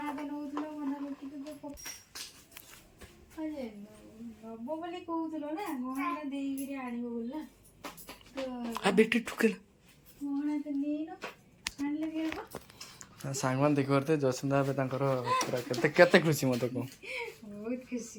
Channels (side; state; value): both; identical; correlation 1.00